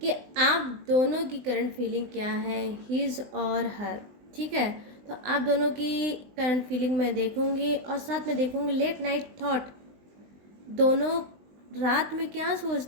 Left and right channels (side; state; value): left; late; 20 ms